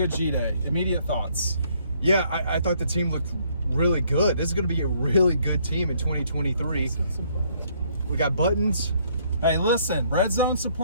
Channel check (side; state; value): both; inverted; correlation -0.67